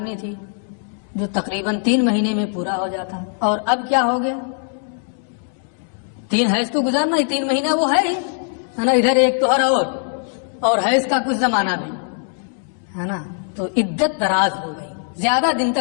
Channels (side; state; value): right; silent; 59 dB below the other